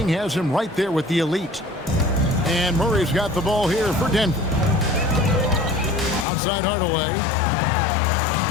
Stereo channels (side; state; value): right; drops out; at 6.2 s